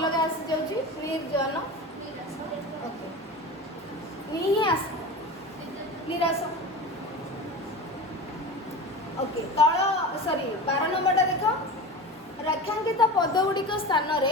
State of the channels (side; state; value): both; normal; correlation 0.30